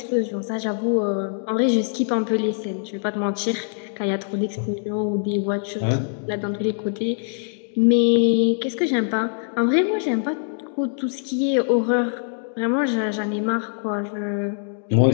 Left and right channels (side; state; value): right; silent; digital silence